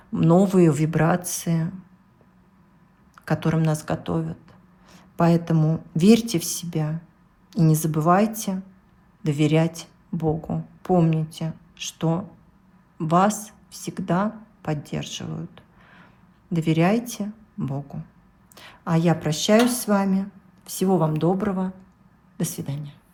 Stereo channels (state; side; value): identical; both; correlation 1.00